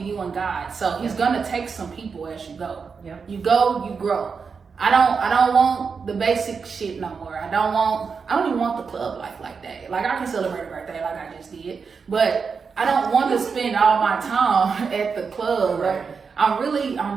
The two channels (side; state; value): left; quieter; 5.5 dB